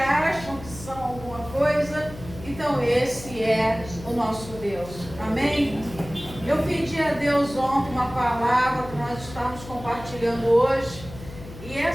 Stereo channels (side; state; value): left; noise; hum, 15 dB below the sound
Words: que são alguma coisa. Então esse é o nosso Deus. Amém? Eu pedi a Deus ontem uma palavra que nós estamos compartilhando hoje. E